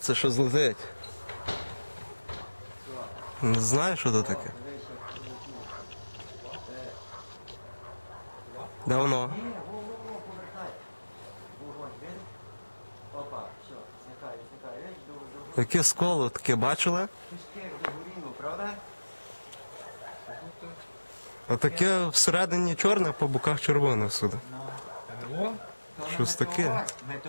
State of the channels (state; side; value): inverted; both; correlation -1.00